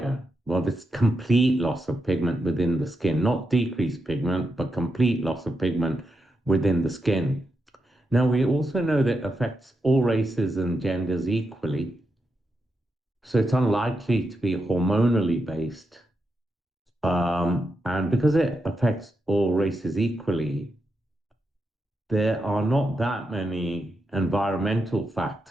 Well, it's complete loss of pigment within the skin, not decreased pigment, but complete loss of pigment within the skin. Now, we also know that it affects all races and genders equally, so it's unlikely to be hormonally based. And because it affects all races equally, there are not that many environmental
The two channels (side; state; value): both; normal; correlation 0.85